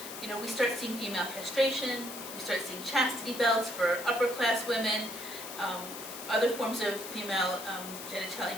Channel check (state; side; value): noise; left; hiss, 10 dB below the sound